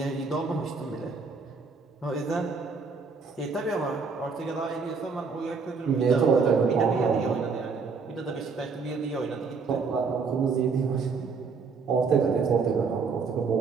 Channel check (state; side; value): quieter; left; 4.9 dB